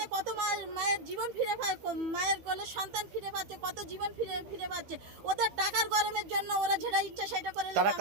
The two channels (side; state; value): left; late; 15 ms